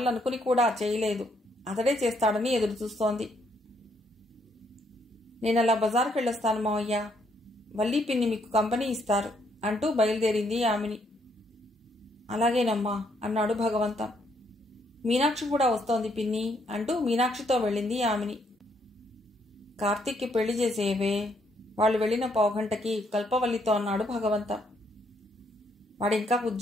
అనుకుని కూడా చేయలేదు. అతడే చేస్తాడని ఎదురు చూస్తోంది. నేనలా బజార్కి వెళ్ళొస్తాను మావయ్య, వల్లీ పిన్ని మీకు కంపెనీ ఇస్తారు అంటూ బయలుదేరింది ఆమెని. అలాగేనమ్మా అన్నాడు భగవంతం. మీనాక్షి కూడా వస్తోంది పిన్ని అంటూ మీనాక్షితో వెళ్ళింది ఆమెని. కార్తీక్కి పెళ్లి చేసేవే, వాళ్ళు వెళ్లిన 1/2 గంటకి కల్పవల్లితో అన్నాడు భగవంతం. వాడింకా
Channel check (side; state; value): both; normal; correlation 0.72